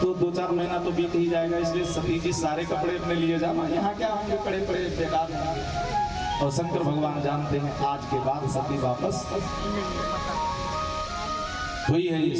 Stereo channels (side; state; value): both; identical; correlation 1.00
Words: तो 2-4 महीना तो बीत ही जाएगा। इसलिए सती जी सारे कपड़े अपने लिए जाना, यहाँ क्या होंगे पड़े पड़े बेकार होंगे। और शंकर भगवान जानते हैं आज के बाद सती वापस हुई है।